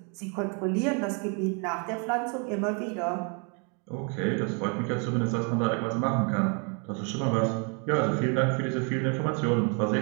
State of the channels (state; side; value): quieter; left; 36.5 dB